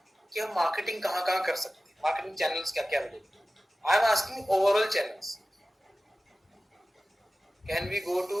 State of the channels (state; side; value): normal; both; correlation 0.96